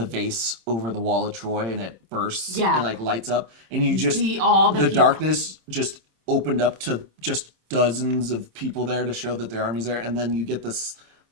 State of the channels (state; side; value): late; left; 26 ms